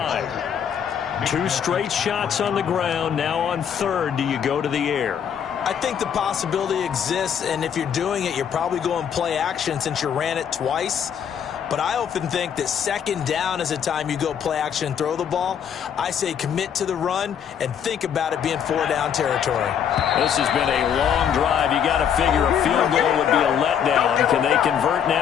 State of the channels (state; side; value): quieter; right; 8.3 dB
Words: 2 straight shots on the ground. Now on 3rd, do you go to the air? I think the possibility exists, and if you're doing it, you're probably going play action since you ran it twice. But I often think that 2nd down is a time you go play action and throw the ball. I say commit to the run and think about it being 4-down territory. This has been a long drive. You got to figure a field goal would be a letdown. Can they convert